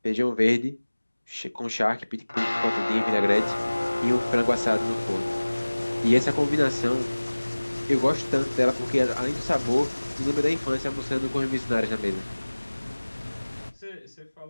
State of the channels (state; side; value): inverted; both; correlation -1.00